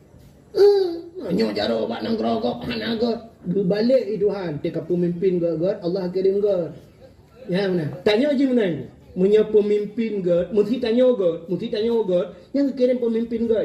Menyu jarok batang gerogok hanaga. Berbalik itu han. Tika pemimpin God, Allah kirim God. Ya mana? Tanya je mana ni? Punya pemimpin God, mesti tanya God, yang kirim pemimpin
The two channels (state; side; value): identical; both; correlation 1.00